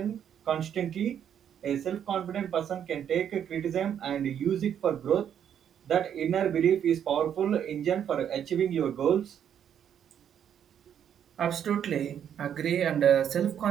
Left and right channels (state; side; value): quieter; left; 9.1 dB